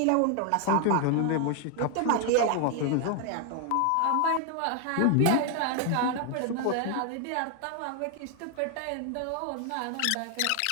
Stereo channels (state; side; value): different; both; correlation 0.00